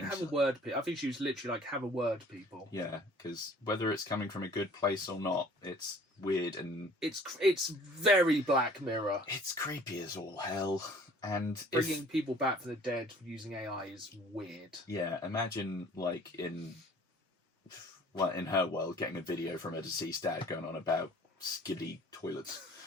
Like, have a word, I think she was literally like, have a word, people. Yeah, because whether it's coming from a good place or not, it's weird and... It's very Black Mirror. It's creepy as all hell. And bringing people back from the dead using AI is weird. Yeah, imagine like in her world, getting a video from her deceased dad going on about skiddy toilets.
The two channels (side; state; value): both; normal; correlation 0.51